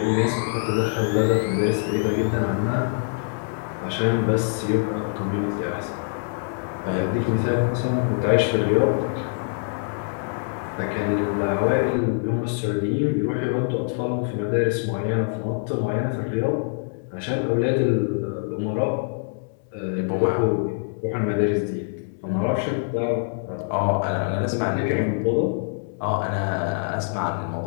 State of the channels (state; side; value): silent; right; digital silence